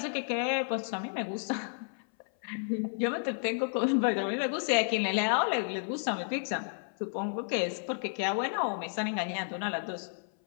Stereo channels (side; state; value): right; silent; 57 dB below the other